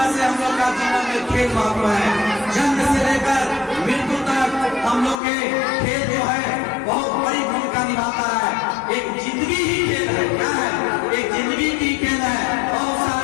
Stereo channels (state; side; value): drops out; right; at 5.2 s